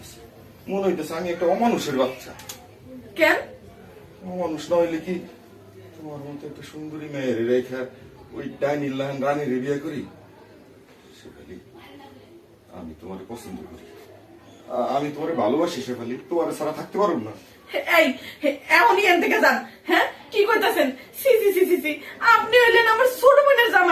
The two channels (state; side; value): identical; both; correlation 1.00